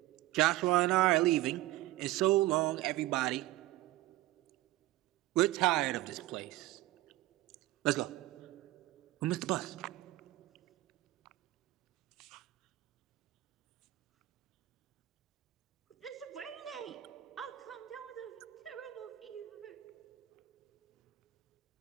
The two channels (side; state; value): left; quieter; 17.0 dB